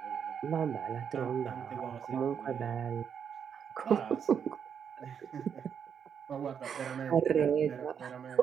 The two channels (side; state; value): left; quieter; 7.6 dB